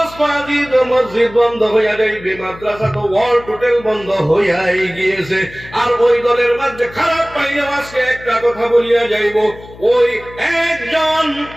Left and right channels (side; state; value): left; noise; hum, 19 dB below the sound